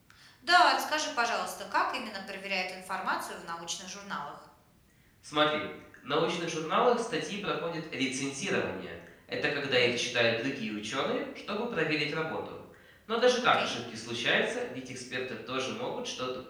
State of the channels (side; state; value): both; identical; correlation 1.00